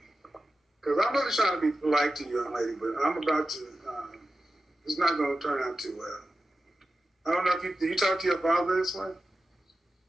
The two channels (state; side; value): normal; both; correlation 0.93